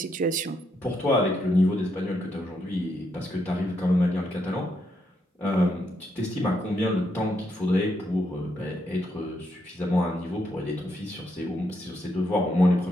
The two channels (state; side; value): normal; both; correlation 0.78